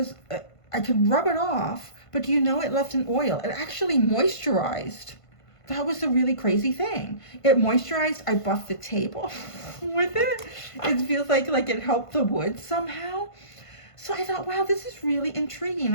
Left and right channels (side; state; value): right; late; 1.5 ms